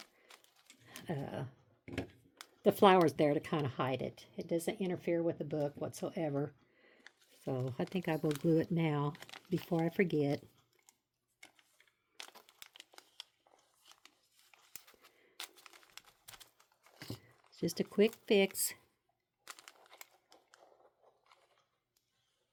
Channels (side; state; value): both; identical; correlation 1.00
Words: the flowers there to kind of hide it. It doesn't interfere with the book whatsoever. So I think I will glue it now before I forget. It's just a quick fix.